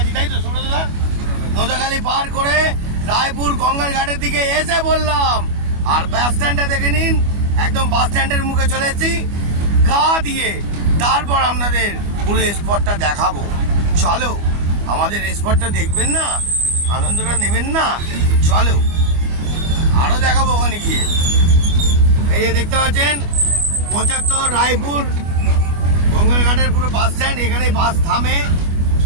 তাই তো সুব্রতদা? নৌদাখালি পার করে রায়পুর গঙ্গার ঘাটের দিকে এসে বললাম। আর বাস স্ট্যান্ডটা দেখে নিন, একদম বাস স্ট্যান্ডের মুখে চলে এসেছি গা দিয়ে। তারপর আপনাদের পুরো স্পটটা দেখাবো। চলো, আমাদের স্পটটা দেখবেন না, আনন্দটা নেবেন না? চলো আরো দেখাবো ওখানে গিয়ে। এই যে দেখতে পাচ্ছেন 75 রায়পুর গঙ্গার ঘাটের পুরো বাস স্ট্যান্ড। এখানে বাস থামে,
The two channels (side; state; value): left; late; 25 ms